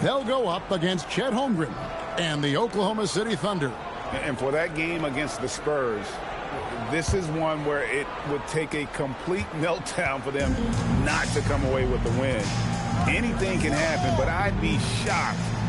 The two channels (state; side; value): identical; both; correlation 1.00